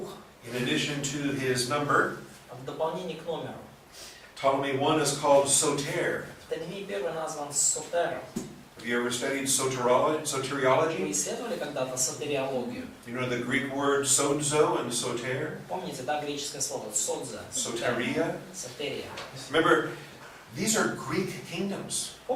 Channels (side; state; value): both; identical; correlation 1.00